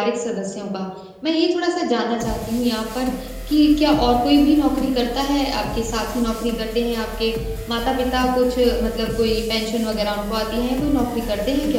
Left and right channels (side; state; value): both; identical; correlation 1.00